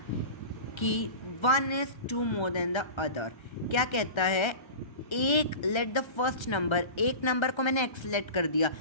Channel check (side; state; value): right; late; 1.3 ms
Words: कि 1 is 2 more than the other। क्या कहता है, एक लेट द फर्स्ट नंबर, एक नंबर को मैंने x लेट कर दिया